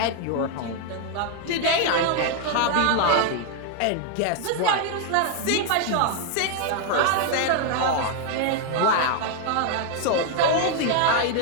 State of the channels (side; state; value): both; different; correlation 0.00